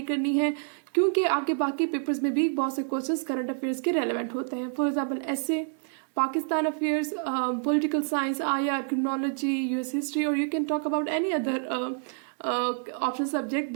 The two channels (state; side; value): silent; left; digital silence